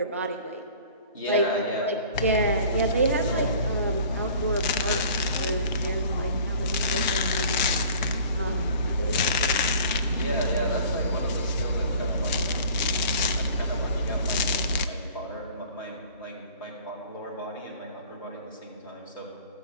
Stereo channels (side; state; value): both; inverted; correlation -0.49